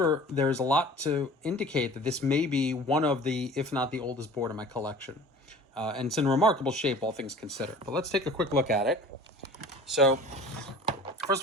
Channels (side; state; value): both; normal; correlation 0.43